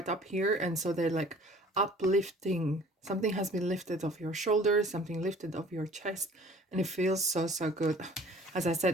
up here, and so they're like uplifting. Something has been lifted off your shoulders, something lifted off your chest, and it feels so good. As I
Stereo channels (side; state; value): both; normal; correlation 0.50